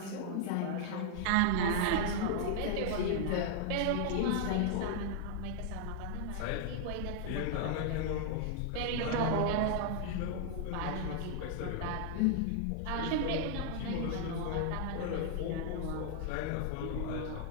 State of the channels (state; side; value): different; both; correlation 0.00